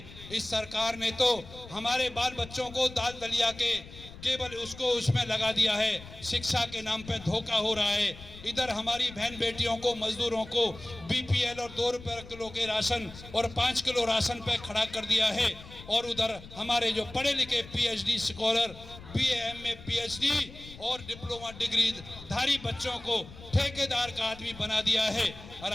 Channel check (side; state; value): left; noise; rumble, 17 dB below the sound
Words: इस सरकार ने तो हमारे बाल बच्चों को दाल दलिया के केवल उसमें लगा दिया है। शिक्षा के नाम पे धोखा हो रहा है। इधर हमारी बहन बेटियों को, मजदूरों को BPL और 2 रुपये किलो के राशन और 5 किलो राशन पे खड़ा कर दिया है। और उधर हमारे जो पढ़े लिखे PhD scholar BA MA PhD और डिप्लोमा डिग्री धारी बच्चों को ठेकेदार का आदमी बना दिया है। और